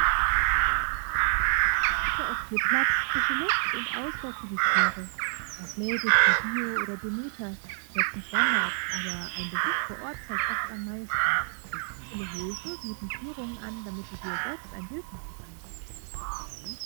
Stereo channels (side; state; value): left; silent; digital silence